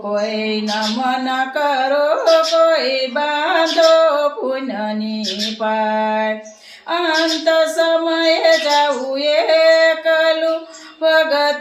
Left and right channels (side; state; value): both; identical; correlation 1.00